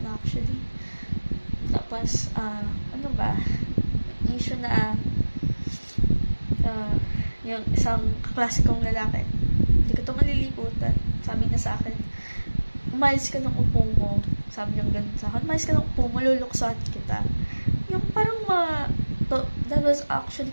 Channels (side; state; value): both; inverted; correlation -1.00